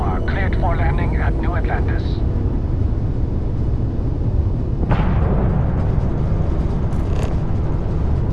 cleared for landing at New Atlantis.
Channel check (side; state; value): both; identical; correlation 1.00